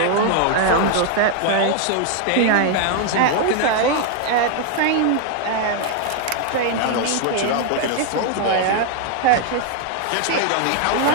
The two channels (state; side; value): different; both; correlation 0.00